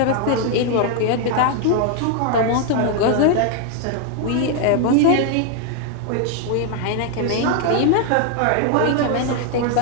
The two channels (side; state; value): both; different; correlation 0.00